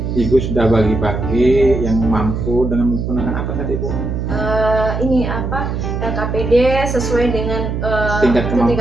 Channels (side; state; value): right; noise; hum, 3 dB below the sound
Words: Ibu sudah bagi-bagi yang mampu dengan menggunakan apa tadi Bu? LKPD sesuai dengan tingkat